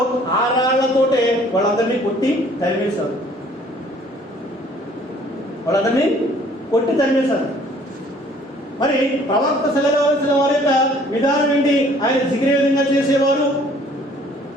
ఆ రాళ్లతోటే వాళ్ళందరినీ కొట్టి తరిమేశారు. వాళ్ళందరినీ కొట్టి తరిమేశారు. ప్రవక్త సల్లల్లాహు అలైహి వసల్లం వారి యొక్క విధానం ఏంటి? ఆయన జిగిరే విధంగా చేసేవారు,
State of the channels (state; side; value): normal; both; correlation 0.57